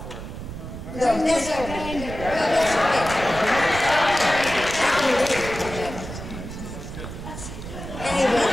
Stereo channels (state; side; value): noise; right; rumble, 10 dB below the sound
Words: for her. No, that's okay. No, that's okay. Anyway,